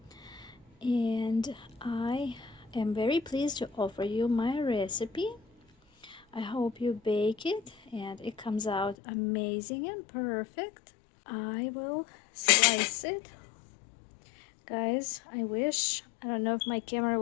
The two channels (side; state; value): right; drops out; at 9.0 s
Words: and I am very pleased to offer you my recipe. I hope you bake it and it comes out amazing and perfect. I will slice it. Guys, I don't know if my camera